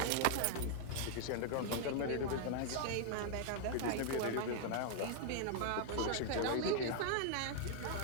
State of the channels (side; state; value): both; different; correlation 0.00